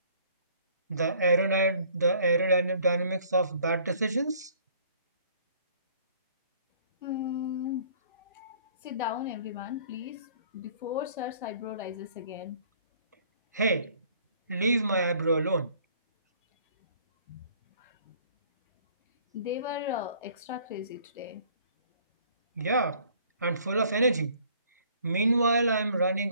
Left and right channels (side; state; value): both; inverted; correlation -0.57